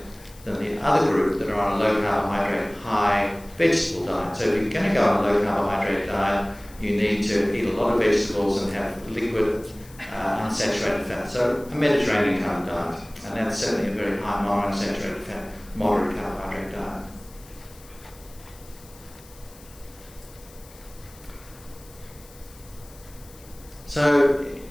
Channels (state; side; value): noise; left; hiss, 23 dB below the sound